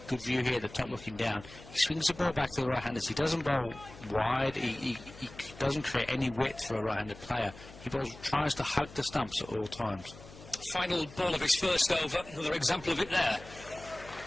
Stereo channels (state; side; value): noise; left; hum, 18 dB below the sound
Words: good view here at the top looking down. He swings the ball back to the right-handers. He doesn't bowl wide. He doesn't create any width for a right-handed player. He tries to hug the stumps at all times. Final ball of his first over. Another example of it there.